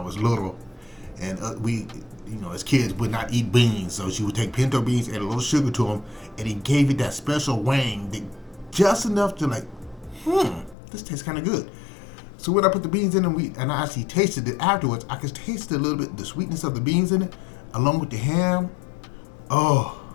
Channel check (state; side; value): drops out; right; at 10.8 s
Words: was little, and we, as kids, would not eat beans, so she would take pinto beans, add a little sugar to them, and it gave it that special wang, just enough to this tastes kind of good. So when I put the beans in and I actually tasted it afterwards, I could taste a little bit the sweetness of the beans in it, along with the ham. Oh,